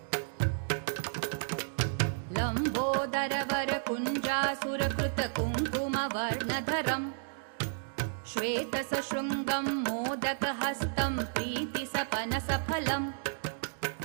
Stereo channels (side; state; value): left; silent; digital silence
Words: लम्बोदरवरकुञ्जासुरकृत कुङ्कुमवर्णधरं श्वेतसशृङ्गं मोदकहस्तं प्रीतिसपनसफलं